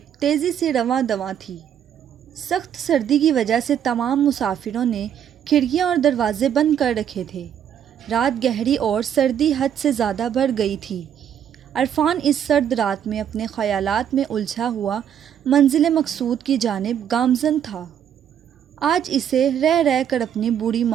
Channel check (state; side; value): quieter; left; 9.2 dB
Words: تیزی سے رواں دواں تھی۔ سخت سردی کی وجہ سے تمام مسافروں نے کھڑکیاں اور دروازے بند کر رکھے تھے۔ رات گہری اور سردی حد سے زیادہ بڑھ گئی تھی۔ عرفان اس سرد رات میں اپنے خیالات میں الجھا ہوا منزل مقصود کی جانب گامزن تھا۔ آج اسے رہ رہ کر اپنی بوڑھی